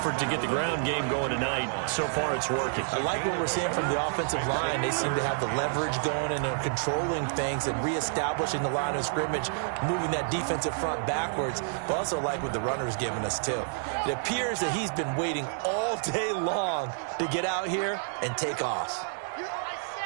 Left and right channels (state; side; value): silent; left; 59 dB below the other